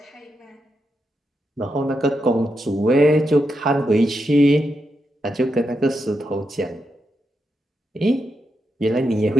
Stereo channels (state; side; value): normal; both; correlation 0.85